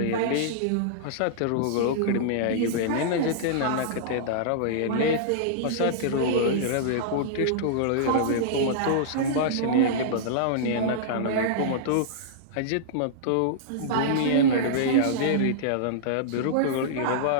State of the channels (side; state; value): both; different; correlation -0.02